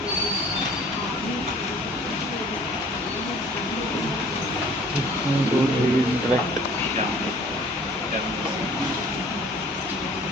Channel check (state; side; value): normal; both; correlation 0.52